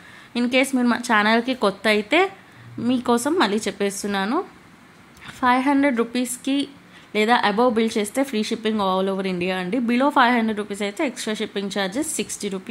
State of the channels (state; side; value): identical; both; correlation 1.00